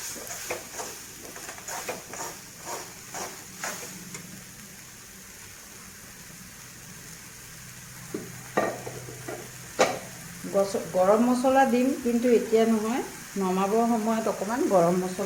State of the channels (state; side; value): identical; both; correlation 1.00